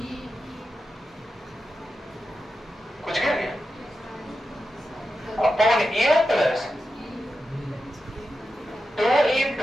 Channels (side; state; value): both; normal; correlation 0.90